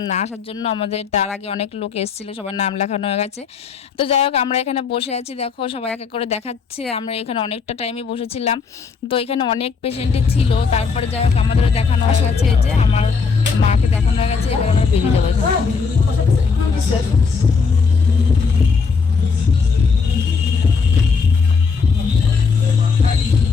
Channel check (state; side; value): quieter; right; 5.2 dB